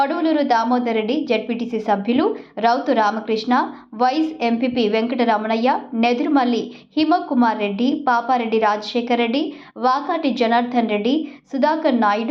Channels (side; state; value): both; identical; correlation 1.00